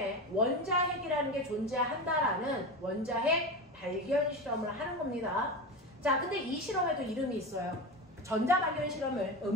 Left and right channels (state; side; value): normal; both; correlation 0.23